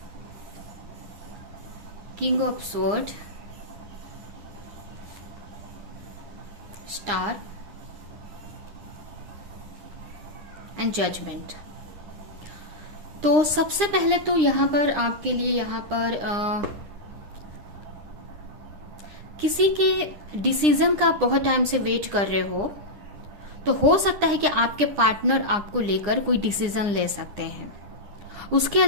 king of sword, star and judgement. तो सबसे पहले तो यहाँ पर आपके लिए यहाँ पर किसी के डिसीजन का आप बहुत टाइम से वेट कर रहे हो, तो हो सकता है कि आपके पार्टनर आपको लेकर कोई डिसीजन ले सकते हैं। उसके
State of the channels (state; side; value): late; left; 9.9 ms